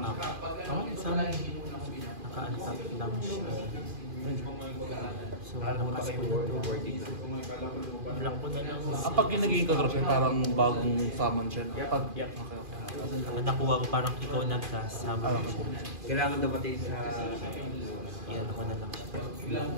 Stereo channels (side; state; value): left; late; 2.4 ms